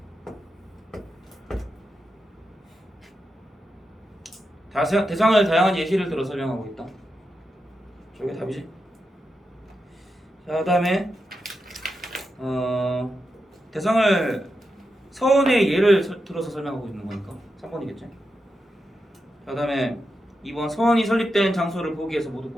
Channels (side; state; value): both; normal; correlation 0.87